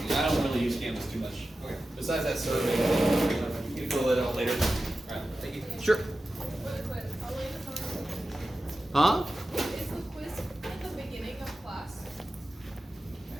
things. I don't really use Canvas too much. Okay. Besides that survey, you can fill it out later. All right. Thank you. Sure. Huh? Is the quiz at the beginning of class?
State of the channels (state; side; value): normal; both; correlation 0.94